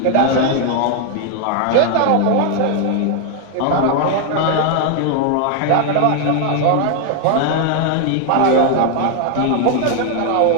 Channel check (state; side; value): different; both; correlation 0.00